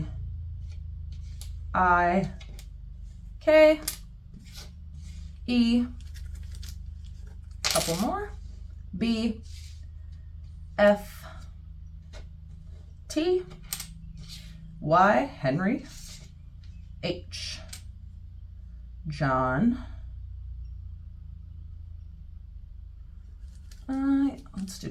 I, K, E, couple more, B, F, T, Y, Henry, H, John, let's do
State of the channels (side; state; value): both; identical; correlation 1.00